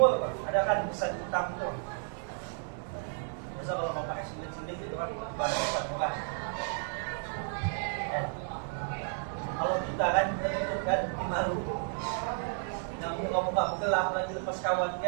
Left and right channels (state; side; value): silent; left; 56 dB below the other